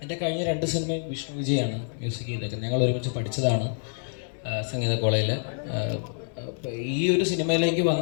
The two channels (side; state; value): right; silent; digital silence